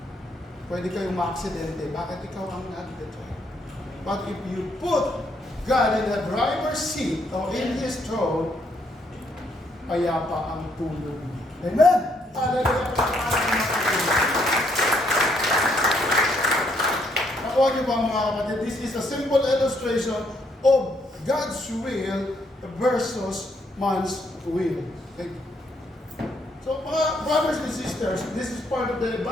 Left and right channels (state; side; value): normal; both; correlation 0.72